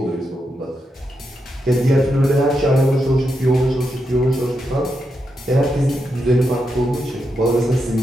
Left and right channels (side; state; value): both; normal; correlation 0.84